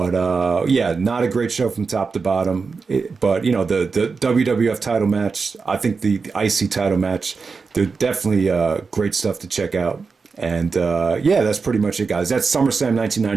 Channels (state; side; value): quieter; left; 4.8 dB